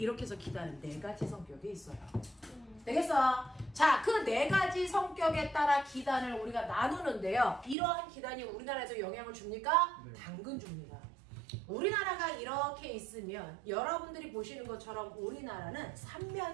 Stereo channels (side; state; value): left; drops out; at 7.8 s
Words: 해서 기단은 네 가지 성격이 있어요. 되겠어? 자, 그 네 가지 성격에 따라 기단을 우리가 나누는데요. 이러한 기단이 우리나라에서 영향을 줍니까? 네. 당근 줍니다. 우리나라가 이렇게 있으면 여러분들이 보시는 것처럼 우리나라는